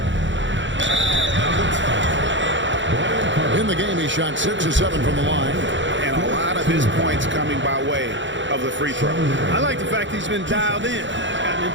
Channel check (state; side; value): late; left; 0.54 ms